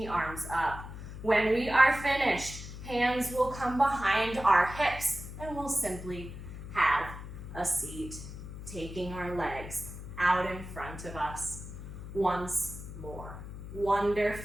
arms up. When we are finished, hands will come behind our hips and we'll simply have a seat, taking our legs out in front of us once more.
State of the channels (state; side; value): noise; left; hum, 11 dB below the sound